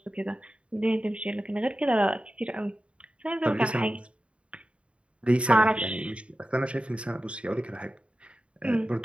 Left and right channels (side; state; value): left; late; 0.060 ms